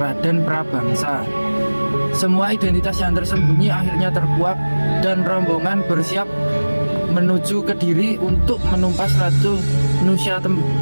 Prabangsa. Semua identitas yang tersembunyi akhirnya terkuak dan rombongan bersiap menuju Kediri untuk menumpas Ratu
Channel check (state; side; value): inverted; both; correlation -1.00